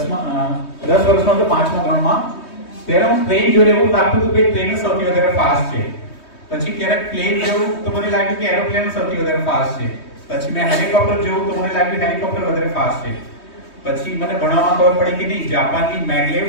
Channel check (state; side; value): late; right; 3.2 ms